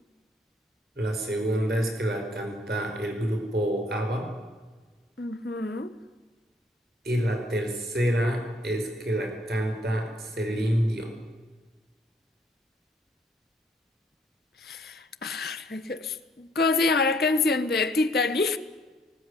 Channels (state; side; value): normal; both; correlation 0.66